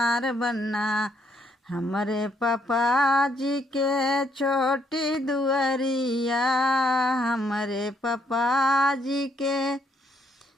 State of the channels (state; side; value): normal; both; correlation 0.71